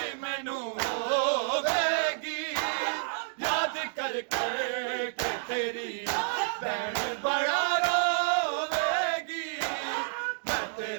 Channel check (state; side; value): silent; left; digital silence